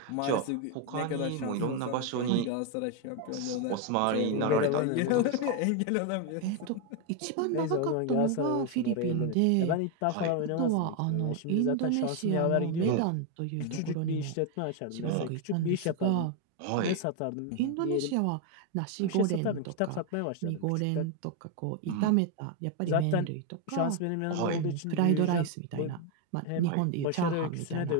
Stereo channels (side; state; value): both; different; correlation 0.01